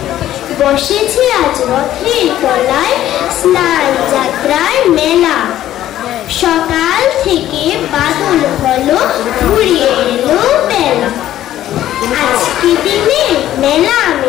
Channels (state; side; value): quieter; right; 12.8 dB